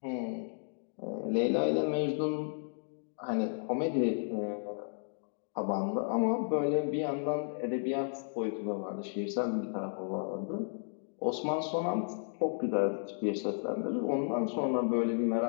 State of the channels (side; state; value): right; silent; digital silence